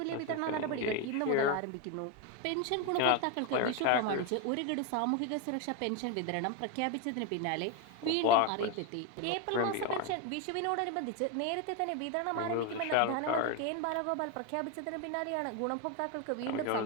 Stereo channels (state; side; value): different; both; correlation 0.02